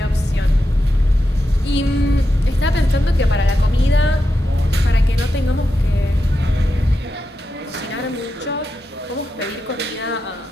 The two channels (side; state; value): both; normal; correlation 0.88